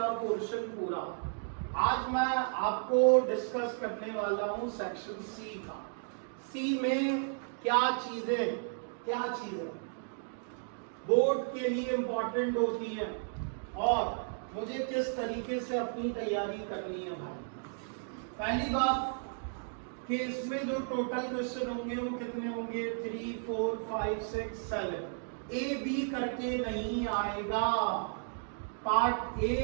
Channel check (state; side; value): silent; left; digital silence